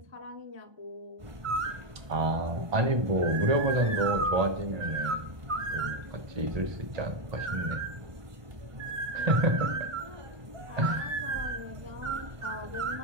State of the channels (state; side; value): late; left; 1.2 ms